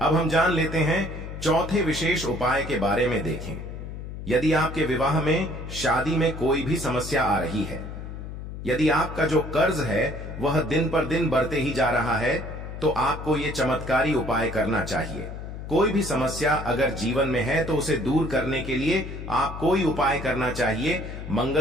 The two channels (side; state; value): left; noise; hum, 9 dB below the sound